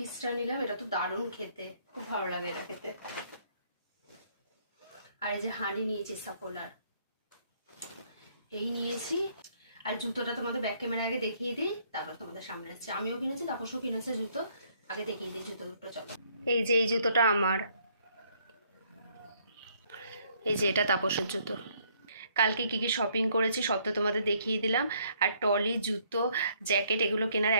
নিলাম, এটা তো দারুণ খেতে, খুব ভালো লাগে এটা খেতে। আর এই যে হানি নিয়েছি সাফোলার, এই নিয়েছি। আর জুতোটা তোমাদের ব্যাক ক্যামেরা আগে দেখিয়ে দিই, তারপর তোমাদের সামনে আসছে। আমিও কিনেছি, তাপসও কিনেছে জুতো, আগে দেখিয়ে দিই জুতো দুটো। চলো, এই যে এই জুতোটা আমার, এই যে এটা তাপসের জুতো। কালকে কী কী শপিং করেছি সব তো তোমাদের দেখিয়ে দিলাম। আর টলি, জুতো, জ্যাকেট এগুলো কেনার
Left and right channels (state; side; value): inverted; both; correlation -0.66